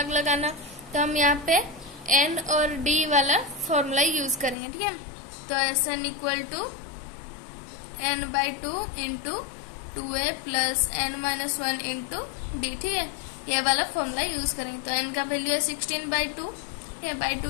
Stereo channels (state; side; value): drops out; right; at 4.5 s